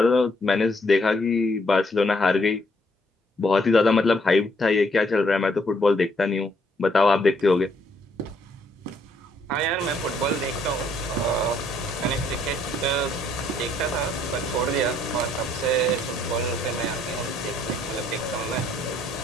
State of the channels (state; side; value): normal; both; correlation 0.69